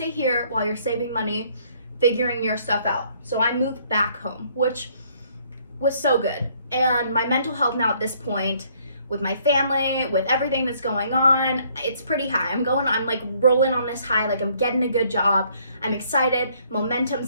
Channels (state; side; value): inverted; both; correlation -0.64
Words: here while you're saving money, figuring your stuff out. So I moved back home, which was so good. And my mental health now at this point, with my family, with everything that's going on, it's pretty high. I'm like rolling on this high, like I'm getting a good job. I'm excited,